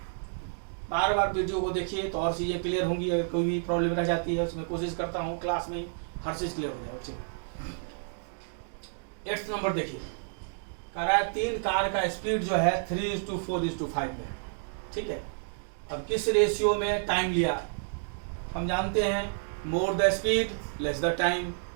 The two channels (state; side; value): silent; left; digital silence